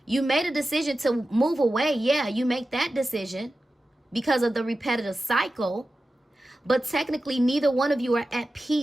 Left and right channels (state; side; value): normal; both; correlation 0.93